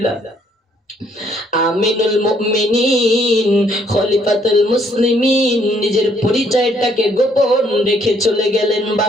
আমিনুল মুমিনিন খলিফাতুল মুসলিমিন নিজের পরিচয়টাকে গোপন রেখে চলে গেলেন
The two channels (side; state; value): both; normal; correlation 0.67